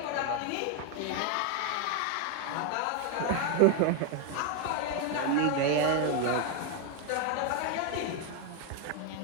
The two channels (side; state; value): both; different; correlation 0.01